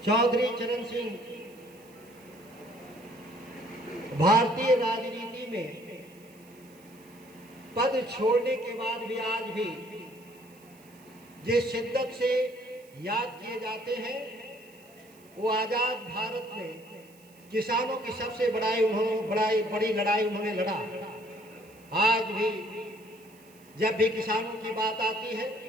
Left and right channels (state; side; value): noise; right; hiss, 27 dB below the sound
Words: चौधरी चरण सिंह भारतीय राजनीति में पद छोड़ने के बाद भी आज भी जिस शिद्दत से याद किए जाते हैं, वो आजाद भारत में किसानों की सबसे बड़ी लड़ाई उन्होंने लड़ा। आज भी जब भी किसानों की बात आती है,